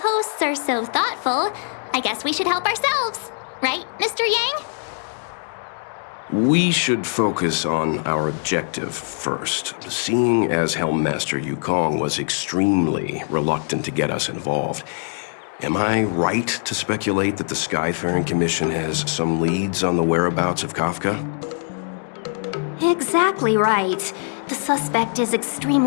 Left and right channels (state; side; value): silent; right; digital silence